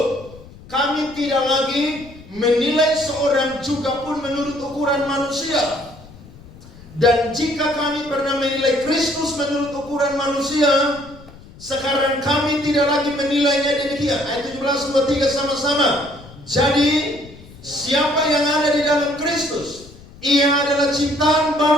kami tidak lagi menilai seorang juga pun menurut ukuran manusia. Dan jika kami pernah menilai Kristus menurut ukuran manusia, sekarang kami tidak lagi menilainya demikian. Ayat 17, 23 sama-sama. Jadi siapa yang ada di dalam Kristus, ia adalah ciptaan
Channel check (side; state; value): left; noise; rumble, 20 dB below the sound